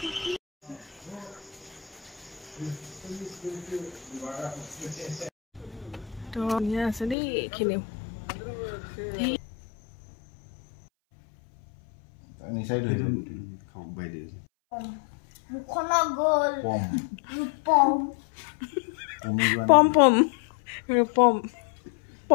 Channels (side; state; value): right; drops out; at 7.2 s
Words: তো ইয়া আছে দেই এইখিনি নিচাই ধৰি খাওঁ বাই দিছে মুখনা গল পম পম পম ৰূপম